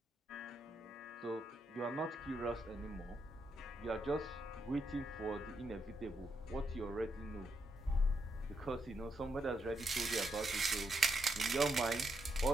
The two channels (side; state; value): both; normal; correlation 0.80